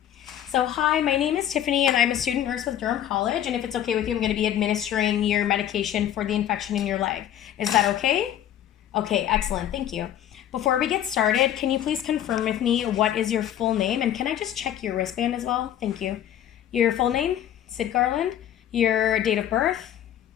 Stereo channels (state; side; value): quieter; right; 11.0 dB